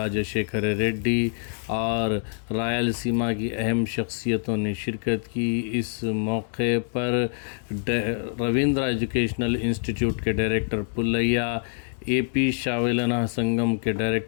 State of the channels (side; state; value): right; silent; digital silence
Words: रेड्डी और रायलसीमा की अहम शख्सियतों ने शिरकत की। इस मौके पर रविंद्र एजुकेशनल इंस्टीट्यूट के डायरेक्टर पुल्लैया, एपी शावेलना संगम के